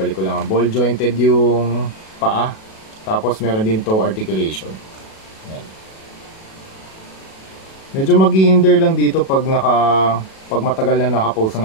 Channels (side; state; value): right; late; 37 ms